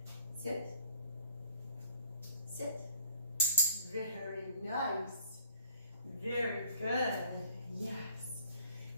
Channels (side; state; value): both; inverted; correlation -0.56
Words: sit. Sit. Very nice. Very good. Yes.